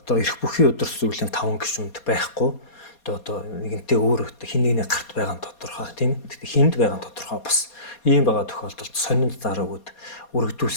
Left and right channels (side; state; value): right; late; 4.2 ms